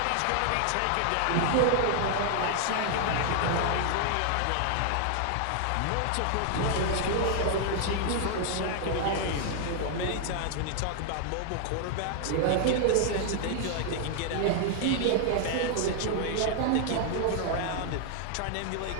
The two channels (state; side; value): different; both; correlation 0.00